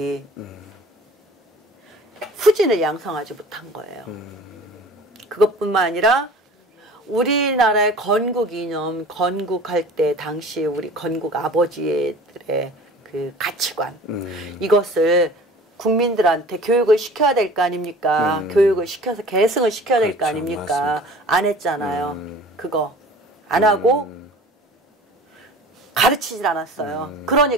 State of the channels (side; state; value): both; normal; correlation 0.43